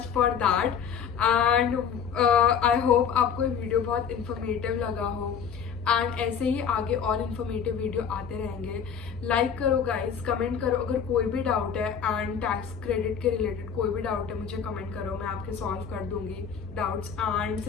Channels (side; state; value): right; quieter; 7.2 dB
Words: for that. And I hope आपको ये वीडियो बहुत इन्फॉर्मेटिव लगा हो। एंड ऐसे ही आगे और इन्फॉर्मेटिव वीडियो आते रहेंगे। लाइक करो गाइस, कमेंट करो अगर कोई भी डाउट है एंड टैक्स क्रेडिट के रिलेटेड कोई भी डाउट है, मुझे कमेंट करो, मैं आपके सॉल्व कर दूंगी डाउट्स। एंड